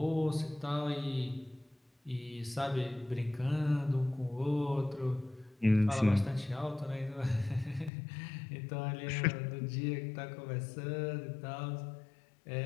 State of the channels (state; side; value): drops out; right; at 7.9 s